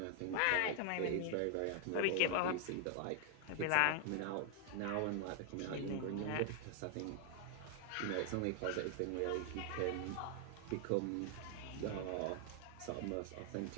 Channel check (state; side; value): different; both; correlation 0.00